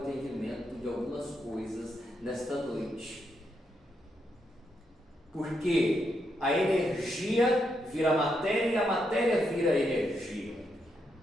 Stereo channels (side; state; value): both; normal; correlation 0.81